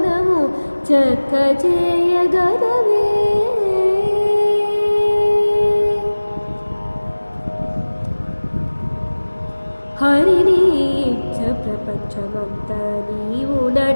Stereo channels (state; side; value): inverted; both; correlation -1.00